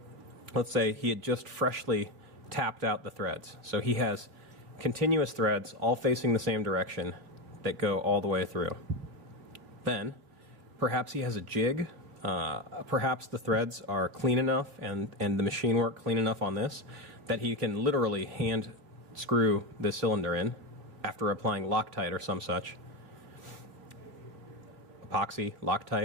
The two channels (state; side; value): late; left; 3.2 ms